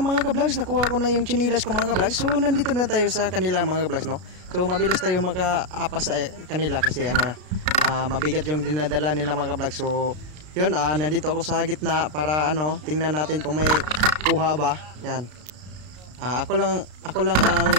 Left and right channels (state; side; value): late; left; 33 ms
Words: mga ka-vlogs, nakuha ko na yung chinilas ko mga ka-vlogs. So nandito na tayo sa kanila mga ka-vlogs, no? So mabilis tayo maka-apas sa kanila kasi mabigat yung dinadala nila mga ka-vlogs. So yun, nandito ako sa gitna para tingnan natin kung may kuha ba. Yan. Ako lang